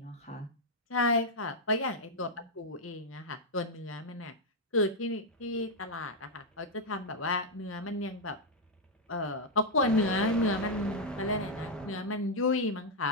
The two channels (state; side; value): normal; both; correlation -0.01